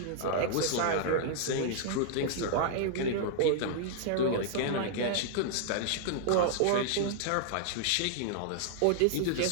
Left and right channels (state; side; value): different; both; correlation -0.01